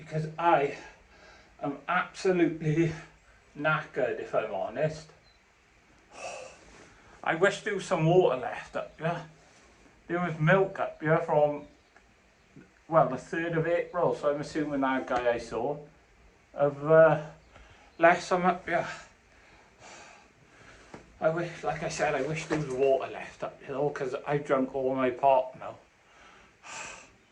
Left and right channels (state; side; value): identical; both; correlation 1.00